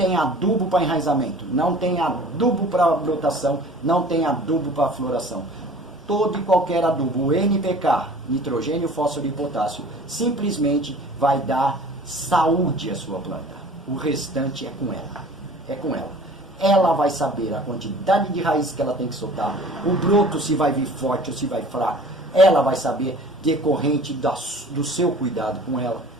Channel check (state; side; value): normal; both; correlation 0.46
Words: adubo para enraizamento, não tem adubo para brotação, não tem adubo para floração. Todo e qualquer adubo, NPK, nitrogênio, fósforo e potássio, simplesmente vai dar saúde à sua planta. O restante é com ela. É com ela. Ela vai saber a quantidade de raiz que ela tem que soltar, o broto se vai vir forte ou se vai fraco. Ela vai saber decorrente do seu cuidado com ela.